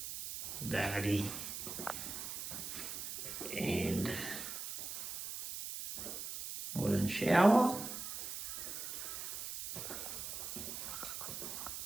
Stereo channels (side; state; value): right; noise; hiss, 6 dB below the sound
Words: vanity, and and shower.